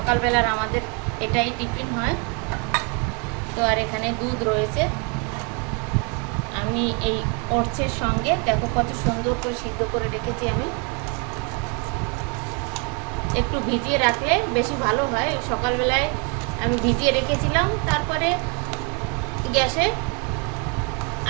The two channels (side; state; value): left; quieter; 34.7 dB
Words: আমাদের এটাই টিফিন হয়। তো আর এখানে দুধ রয়েছে, আমি এই ওটসের সঙ্গে দেখো কত সুন্দর করে সিদ্ধ করে রেখেছি। আমি একটু ভিজিয়ে রাখলে বেশি ভালো হয়। সকালবেলায় আমি ভিজিয়ে রেখেছিলাম, তারপরে গ্যাসে